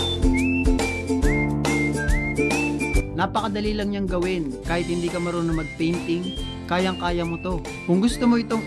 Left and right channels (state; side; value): identical; both; correlation 1.00